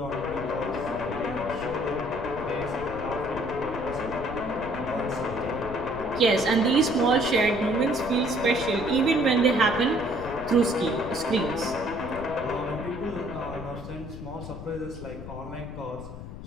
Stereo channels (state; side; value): noise; left; rumble, 11 dB below the sound